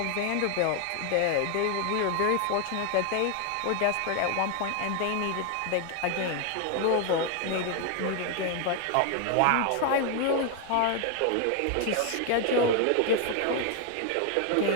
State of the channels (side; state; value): both; different; correlation 0.01